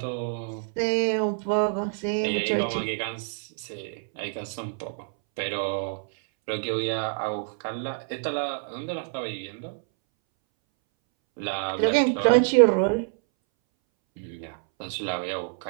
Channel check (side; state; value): left; silent; 60 dB below the other